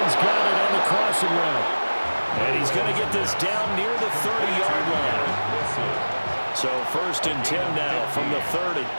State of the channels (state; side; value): inverted; both; correlation -1.00